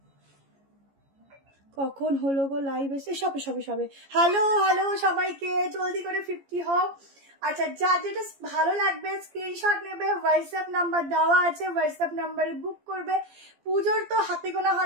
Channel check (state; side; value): late; left; 15 ms